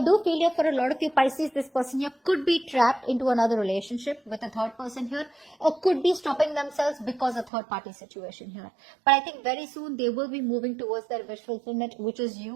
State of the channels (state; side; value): drops out; left; at 7.5 s